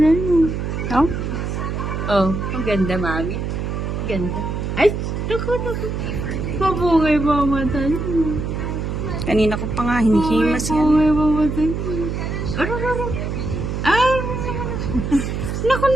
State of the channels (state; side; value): noise; right; hum, 3 dB below the sound